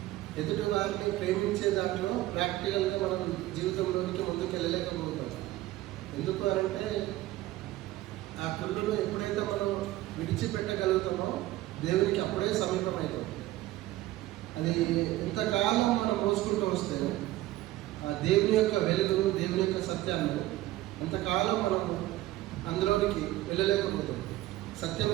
ఎదుటి వారిని ప్రేమించే దాంట్లో ప్రాక్టికల్గా మనం జీవితంలోనికి ముందుకు వెళ్ళలేకపోతాం. ఎందుకు అంటే ఆ కుళ్ళును ఎప్పుడైతే మనం విడిచిపెట్టగలుగుతామో దేవునికి అప్పుడే సమీపం అవుతాం. అది ఎంతకాలం మనం మోసుకుంటూ వస్తే ఆ దేవుని యొక్క వెలుగును, దేవుని యొక్క సత్యాన్ని అంతకాలం మనం అందులోనికి వెళ్ళలేకపోతాం,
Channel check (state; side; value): quieter; left; 16.3 dB